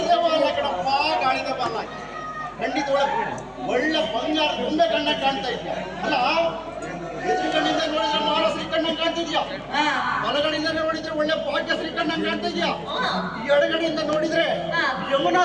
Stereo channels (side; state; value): both; identical; correlation 1.00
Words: ಬಾಲ ಕಣಪ್ಪ, ಗಾಳಿದ ಬಾಲ ಖಂಡಿತ ಒಳ್ಳೆ ಬಂಗಾರ ಗೊಂಬೆ ಕಣ್ಣ ಕಾಣ್ತಾ ಇದ್ಯಾ ಅಲ್ಲ. ಎದುರುಗಡೆಯಿಂದ ನೋಡಿದ್ರೆ ಮಹಾರಾಷ್ಟ್ರೀ ಕಣ್ಣ ಕಾಣ್ತಿದ್ಯಾ, ಬಲಗಡೆಯಿಂದ ನೋಡಿದ್ರೆ ಒಳ್ಳೆ ಭಾಗ್ಯಶ್ರೀ ಕಣ್ಣ ಕಾಣ್ತಾ ಇದ್ಯಾ, ಎಡಗಡೆಯಿಂದ ನೋಡಿದ್ರೆ